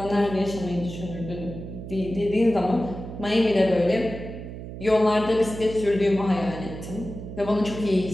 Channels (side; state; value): right; noise; hum, 10 dB below the sound